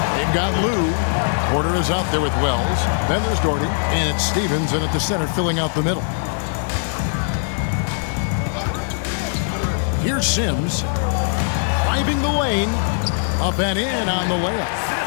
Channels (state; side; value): silent; right; digital silence